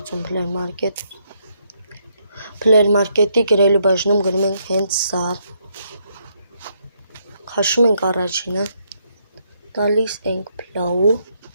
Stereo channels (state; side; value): inverted; both; correlation -0.75